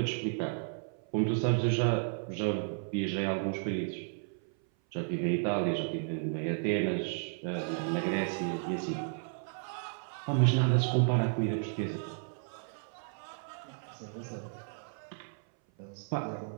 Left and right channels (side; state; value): left; silent; 56 dB below the other